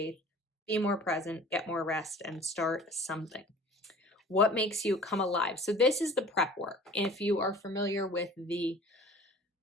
be more present, get more rest, and start something. What makes you come alive? So this is the prep work. If you are familiar with the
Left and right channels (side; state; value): both; normal; correlation 0.45